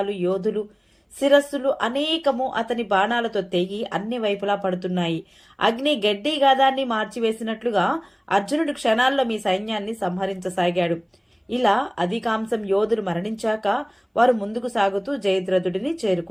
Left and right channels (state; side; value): identical; both; correlation 1.00